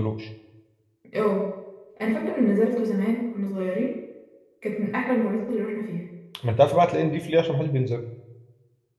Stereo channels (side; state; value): both; identical; correlation 1.00